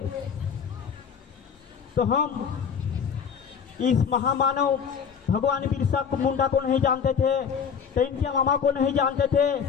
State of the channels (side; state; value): right; quieter; 6.9 dB